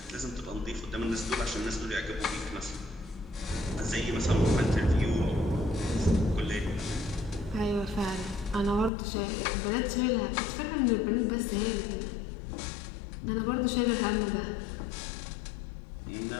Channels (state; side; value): drops out; right; at 8.9 s